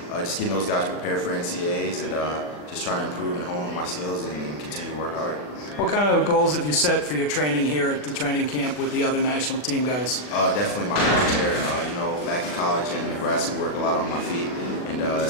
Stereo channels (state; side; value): late; right; 40 ms